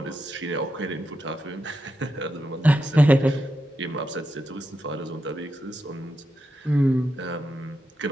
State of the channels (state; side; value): normal; both; correlation 0.86